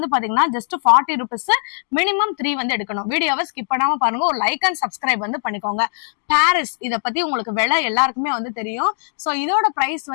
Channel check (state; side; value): silent; right; digital silence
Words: பாத்தீங்கன்னா ஜஸ்ட் 40 rupees. மினிமம் 3 வந்து எடுக்கணும். வீடியோவை ஸ்கிப் பண்ணாம பாருங்க. ஒரு லைக் அண்ட் சப்ஸ்கிரைப் வந்து பண்ணிக்கோங்க. பாரிஸ், இத பத்தி உங்களுக்கு விலை எல்லாருக்குமே வந்து தெரியும். சோ இதோட பிரைஸ்